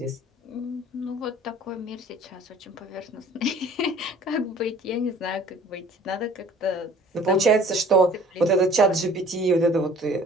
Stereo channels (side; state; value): both; normal; correlation 0.51